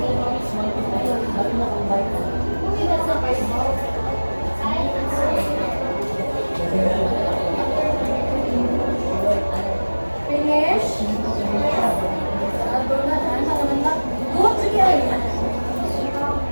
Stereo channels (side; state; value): both; inverted; correlation -1.00